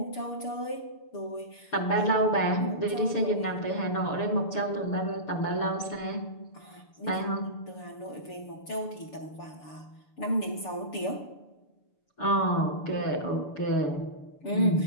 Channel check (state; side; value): late; right; 6.9 ms